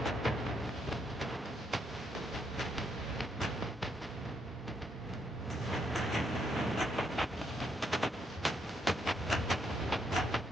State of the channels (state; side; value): normal; both; correlation 0.75